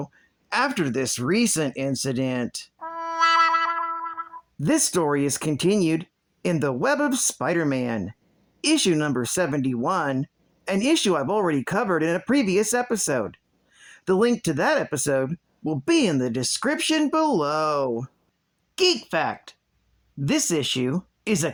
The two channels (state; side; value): identical; both; correlation 1.00